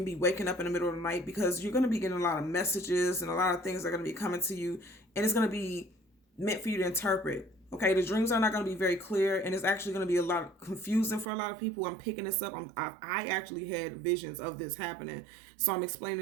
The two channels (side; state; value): left; drops out; at 11.2 s